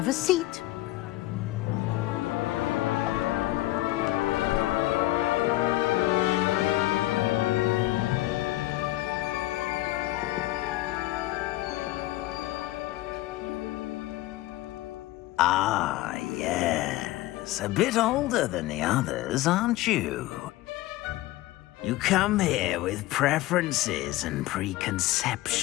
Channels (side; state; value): right; quieter; 17.1 dB